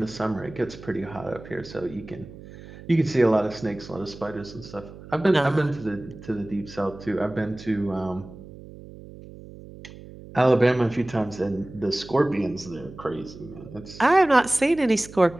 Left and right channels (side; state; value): right; noise; hum, 17 dB below the sound